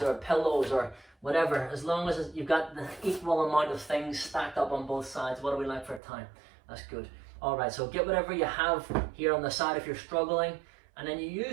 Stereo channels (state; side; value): drops out; left; at 6.0 s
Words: or pillows or whatever, as long as you've got the equal amount of things stacked up on both sides. What do we like for time? That's good. All right, so get whatever you have here on the side if you're struggling, and then you